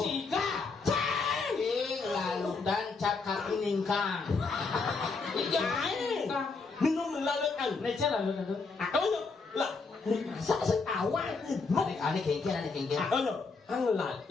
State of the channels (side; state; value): right; quieter; 4.4 dB